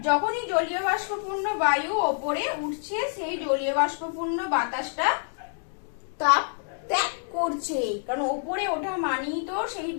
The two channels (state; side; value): silent; right; digital silence